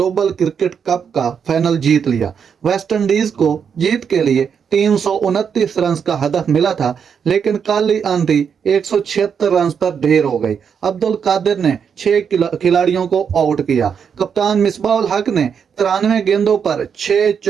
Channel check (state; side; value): quieter; left; 7.0 dB